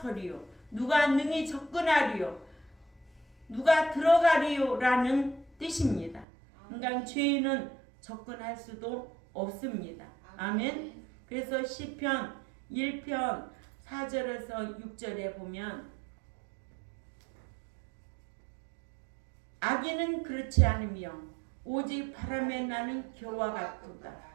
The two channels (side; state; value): left; drops out; at 6.2 s